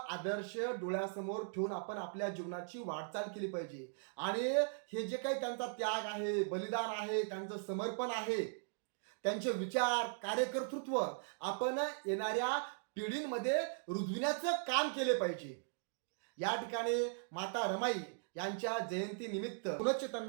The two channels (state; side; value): silent; left; digital silence